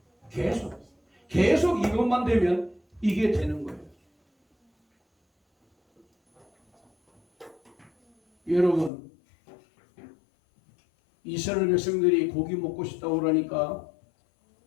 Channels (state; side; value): drops out; right; at 8.9 s